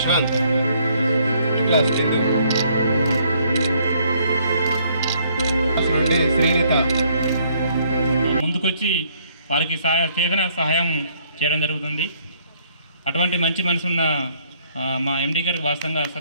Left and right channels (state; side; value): inverted; both; correlation -0.66